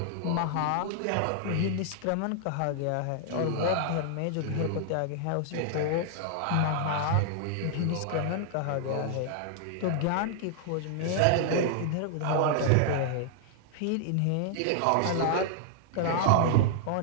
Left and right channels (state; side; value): different; both; correlation -0.01